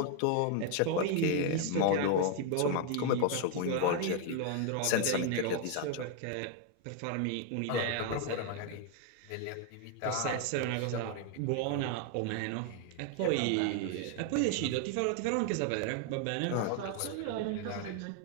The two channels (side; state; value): both; different; correlation 0.01